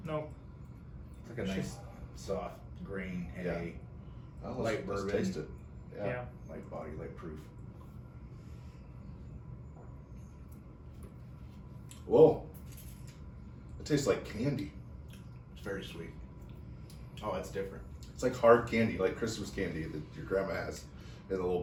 Nope. It's like a nice, soft, green, hay, Oh, Light let's bourbon. taste it. Yeah. light body, light proof. Whoa. It tastes like candy. It's very sweet. Oh, that's different. It's like hard candy, like Christmas candy that your grandma has in a little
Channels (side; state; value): both; identical; correlation 1.00